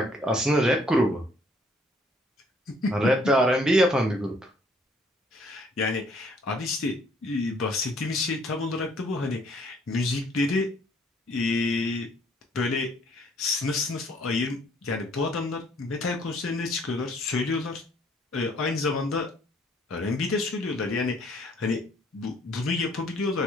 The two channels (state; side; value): normal; both; correlation 0.62